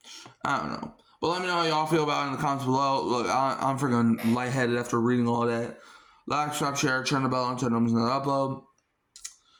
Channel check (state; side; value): identical; both; correlation 1.00